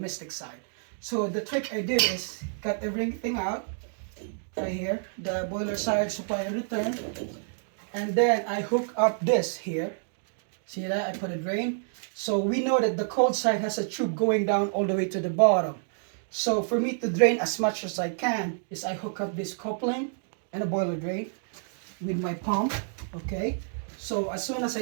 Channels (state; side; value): silent; left; digital silence